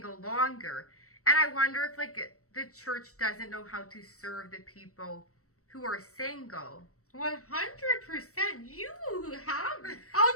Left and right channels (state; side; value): late; right; 0.65 ms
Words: longer. And I wonder if the church doesn't know how to serve the people who are single. 100%. You have.